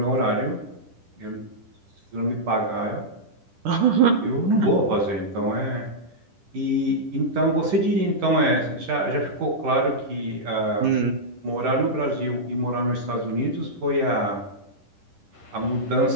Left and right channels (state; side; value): late; left; 10 ms